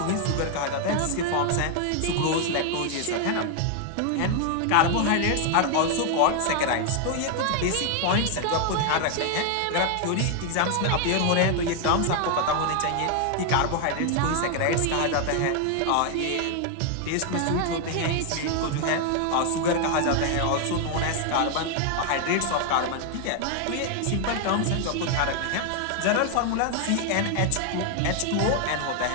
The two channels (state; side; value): different; both; correlation 0.00